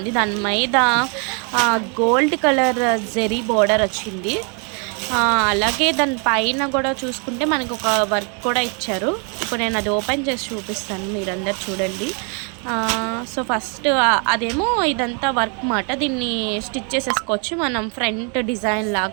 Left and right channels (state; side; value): quieter; left; 37.6 dB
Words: దాని మీద గోల్డ్ కలర్ జెరీ బోర్డర్ వచ్చింది. అలాగే దాని పైన కూడా చూసుకుంటే మనకు ఒక వర్క్ కూడా ఇచ్చారు. ఇప్పుడు నేను అది ఓపెన్ చేసి చూపిస్తాను, మీరందరు చూడండి. సో ఫస్ట్ అదేమో ఇదంతా వర్క్ మాట. దీన్ని స్టిచ్ చేసేసుకోవచ్చు మనం, ఫ్రంట్ డిజైన్